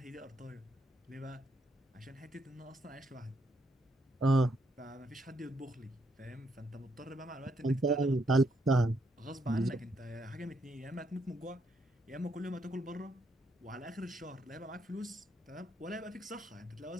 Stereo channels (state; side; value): normal; both; correlation 0.75